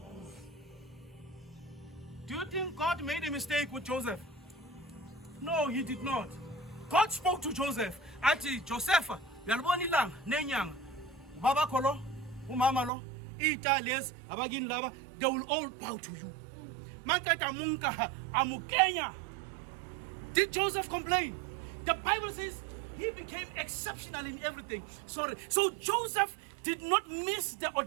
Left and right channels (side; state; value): left; drops out; at 12.9 s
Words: Do you think God made a mistake with Joseph? No, he did not. God spoke to Joseph. Ati Joseph, yalibona ilanga nenyanga. Baba kolo, umama lo, iitales, abagini laba, they will all bow to you. Makata munka amukenya. Did Joseph complain? The Bible says he became exceptional in everything. So Joseph did not miss the